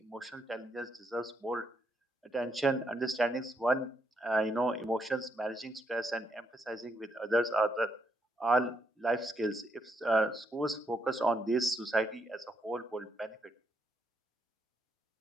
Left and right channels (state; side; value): normal; both; correlation 0.77